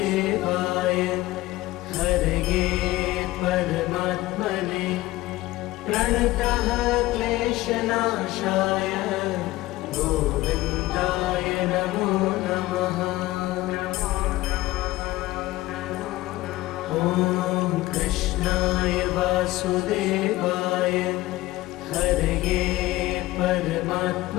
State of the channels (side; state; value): right; quieter; 17.9 dB